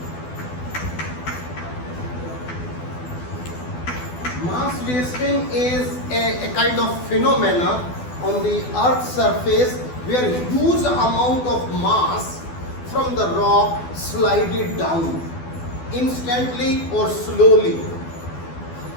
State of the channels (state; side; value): late; right; 12 ms